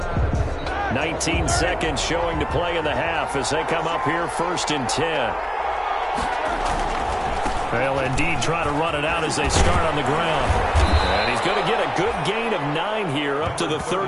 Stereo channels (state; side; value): identical; both; correlation 1.00